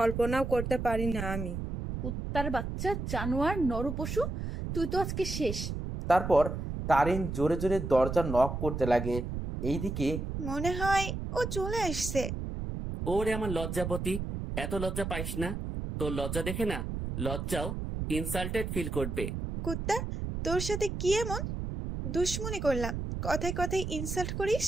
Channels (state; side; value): noise; right; rumble, 4 dB below the sound